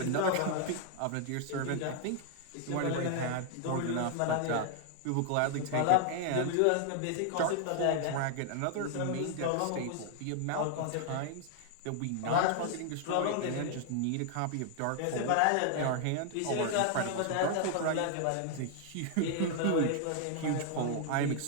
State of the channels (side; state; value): both; different; correlation 0.00